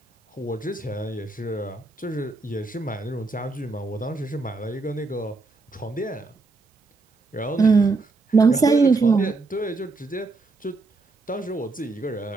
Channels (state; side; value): quieter; left; 3.6 dB